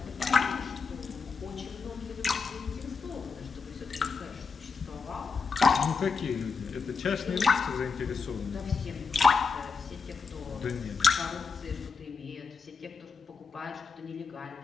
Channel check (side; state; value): right; quieter; 5.1 dB